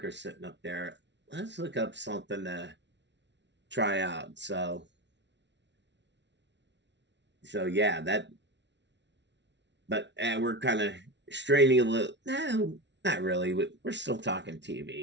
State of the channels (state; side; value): late; left; 0.51 ms